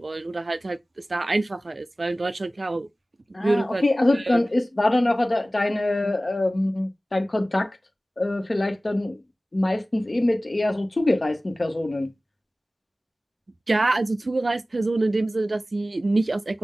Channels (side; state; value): both; normal; correlation 0.97